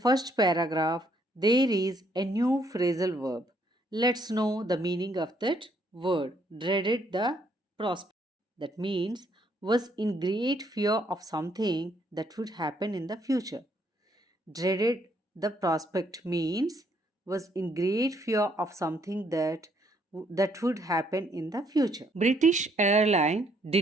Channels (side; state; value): both; normal; correlation 0.69